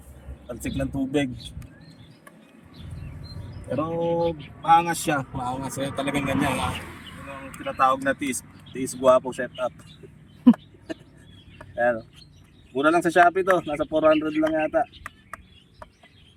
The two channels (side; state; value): both; identical; correlation 1.00